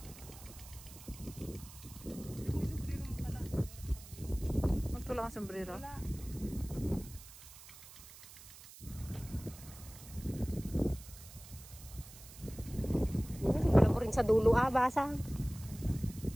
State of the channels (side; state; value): right; noise; hiss, 17 dB below the sound